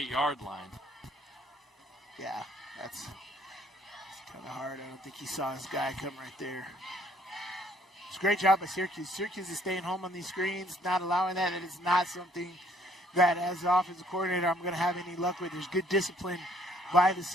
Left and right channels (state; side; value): normal; both; correlation 0.62